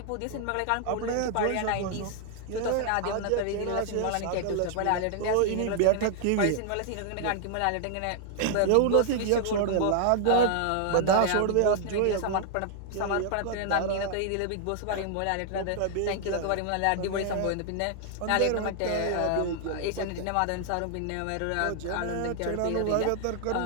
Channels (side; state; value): both; different; correlation 0.00